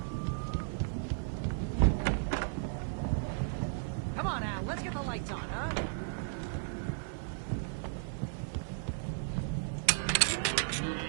Come on, Al, let's get the lights on, huh?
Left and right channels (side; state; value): left; silent; digital silence